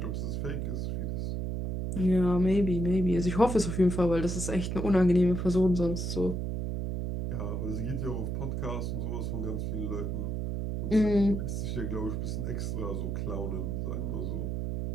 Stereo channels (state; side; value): noise; right; hum, 2 dB below the sound